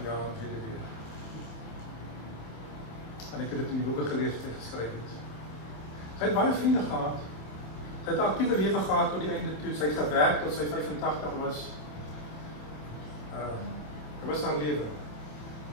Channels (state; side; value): late; right; 27 ms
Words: jaar en weet dit weer. En ek het dit in die boeke gelees wat hy geskryf het. Sy het baie vriende gehad. Sy het 'n aktiewe lewe gehad tot die einde toe. Sy het gewerk tot sy 85 was. Dit was haar lewe.